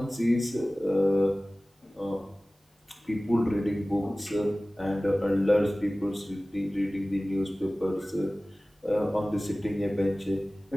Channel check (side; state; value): both; normal; correlation 0.98